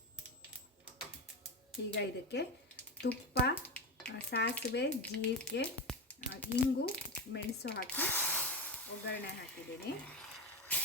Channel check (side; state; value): both; normal; correlation 0.18